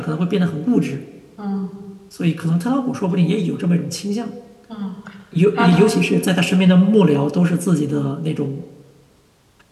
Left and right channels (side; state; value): both; identical; correlation 1.00